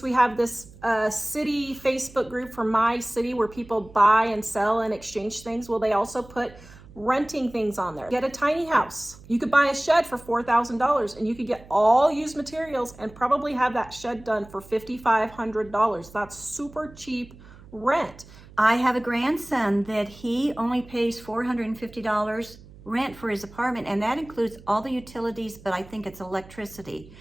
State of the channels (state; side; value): noise; right; hum, 21 dB below the sound